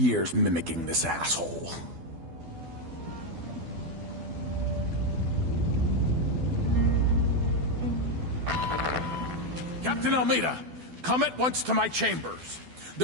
mimicking this asshole. Captain Almeida, come at once to my chambers.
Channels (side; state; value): left; late; 12 ms